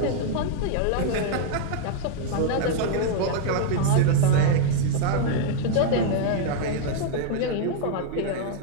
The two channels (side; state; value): both; different; correlation -0.01